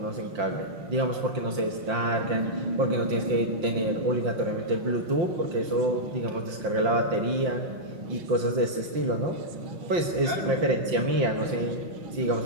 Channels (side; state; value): left; late; 5.8 ms